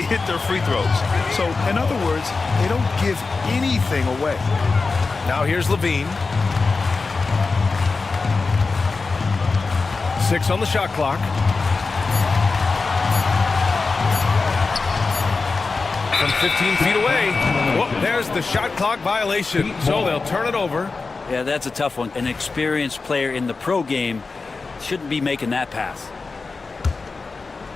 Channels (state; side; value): quieter; right; 4.2 dB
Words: hit their free throws. So, in other words, they don't give anything away. Now here's Levine. 6 on the shot clock. From 15 feet away. Whoop, there's the shot clock violation, so they'll turn it over. Yeah, that's a tough one. An experienced player in the pro game shouldn't be making that pass.